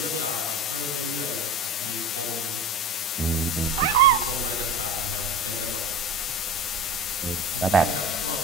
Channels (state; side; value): normal; both; correlation 0.32